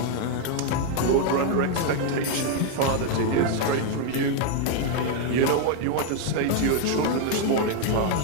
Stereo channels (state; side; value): different; both; correlation 0.00